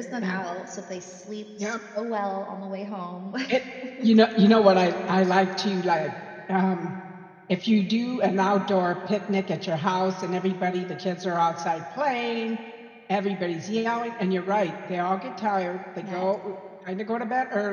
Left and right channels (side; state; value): both; identical; correlation 1.00